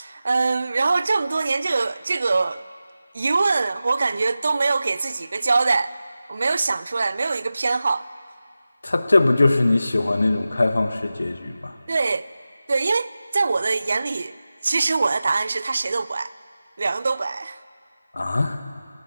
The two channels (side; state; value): both; inverted; correlation -0.95